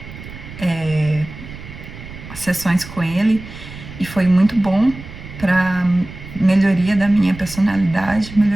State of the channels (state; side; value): noise; right; rumble, 14 dB below the sound